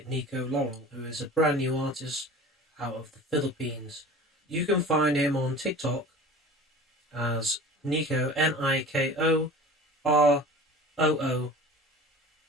Nico Laurel, who is a brand new artist out of the Philippines. You can find him on TikTok as Nico, NIKOROORERU,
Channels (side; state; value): both; normal; correlation 0.40